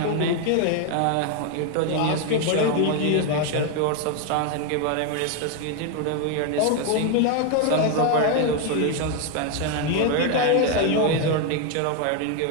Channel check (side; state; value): both; different; correlation 0.01